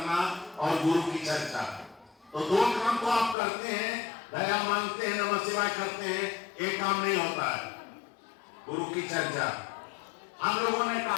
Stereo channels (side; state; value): right; drops out; at 3.4 s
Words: और गुरु की चर्चा। तो 2 काम तो आप करते हैं, दया मांगते हैं, नमः शिवाय करते हैं, एक काम नहीं होता है, गुरु की चर्चा। हम लोगों ने